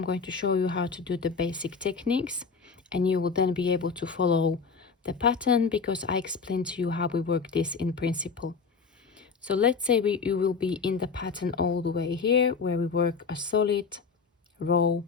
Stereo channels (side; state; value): right; quieter; 5.2 dB